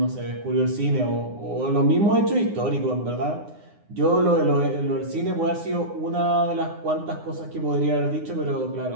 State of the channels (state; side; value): late; left; 9.7 ms